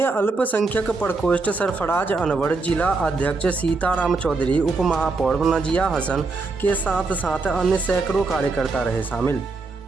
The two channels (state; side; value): quieter; left; 3.8 dB